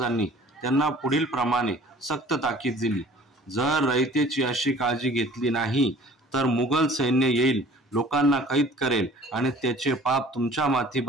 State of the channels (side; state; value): both; normal; correlation 0.49